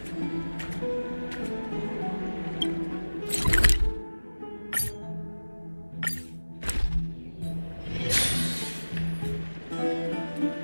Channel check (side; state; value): both; inverted; correlation -1.00